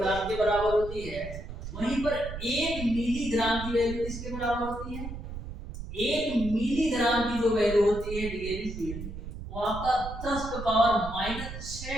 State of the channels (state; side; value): noise; right; rumble, 9 dB below the sound